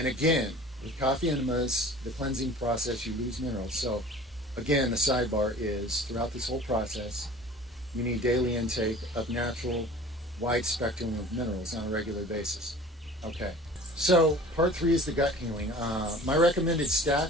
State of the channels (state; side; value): normal; both; correlation 0.43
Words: again, with coffee enemas, the cleansing process, you lose minerals. So again, the sidebar is throughout this whole process, you need daily intake of natural, wide spectrum of minerals on a regular basis. Okay. So part 3 is the gut healing. My recommended